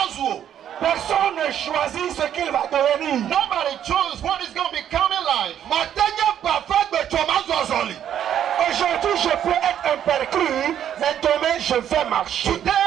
Personne ne choisit ce qu'il va devenir. Nobody chose what is going to become in life. Aujourd'hui, je peux être un perclus, mais demain, je vais marcher. Today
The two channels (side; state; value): left; quieter; 10.0 dB